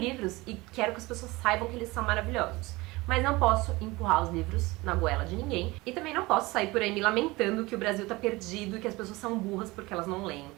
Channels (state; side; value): quieter; left; 21.8 dB